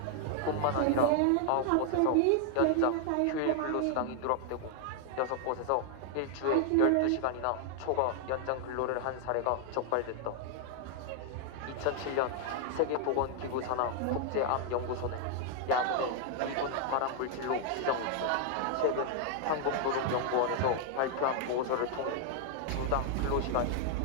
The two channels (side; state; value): both; different; correlation 0.00